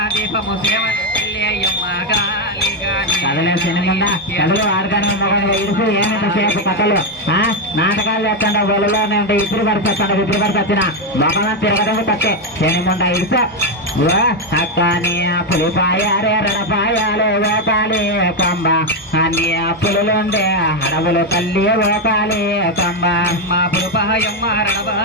దీపము సేవ కదలే సినిమా కదలు ఆడతాను ఇడుసు ఏమింతసేపు కథలు నాటకాలు చేస్తాడు బొలలోనే ఉంటే ఇప్పుడు పడితే ఇప్పుడు పడితే వచ్చిన మొక్కలను తిరగడం తప్పే సినిముండ ఇడుసు అక్కని పులిపాయారే రడపాయాలు ఓకాలి కంబ అన్ని పులులుండే అడవులు తల్లి ఓకాలి కంబ పులిపాయమ్మ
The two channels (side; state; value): both; normal; correlation 0.05